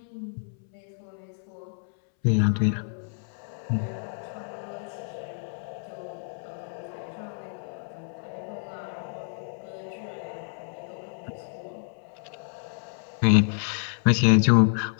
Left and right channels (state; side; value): silent; right; 59 dB below the other